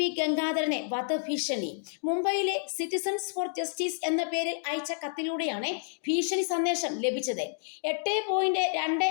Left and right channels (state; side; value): silent; right; digital silence